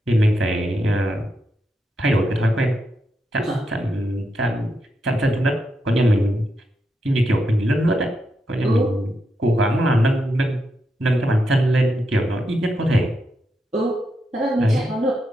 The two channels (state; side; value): normal; both; correlation 0.84